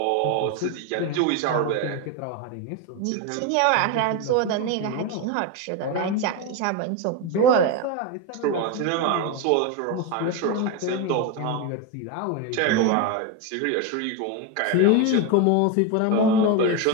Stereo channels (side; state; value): both; different; correlation 0.03